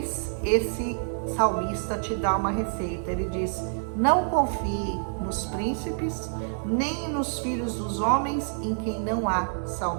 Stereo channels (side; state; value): left; silent; 60 dB below the other